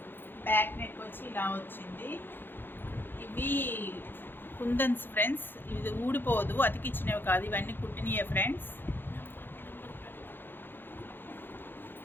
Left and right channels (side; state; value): right; late; 0.099 ms